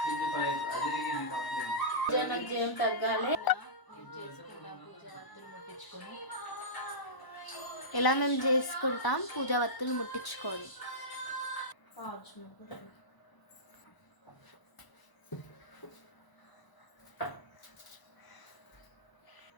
జయం తగ్గాలి. ఇలా మేము చేసుకుంటాం పూజా వత్తులు ముట్టించుకొని.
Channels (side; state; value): right; late; 1.0 ms